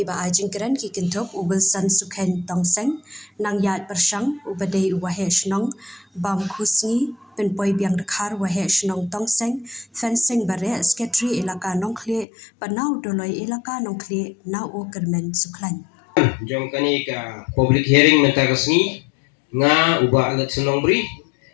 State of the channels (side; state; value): right; drops out; at 12.2 s